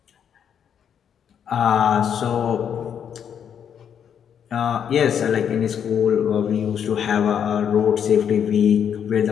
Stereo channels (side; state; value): right; quieter; 8.3 dB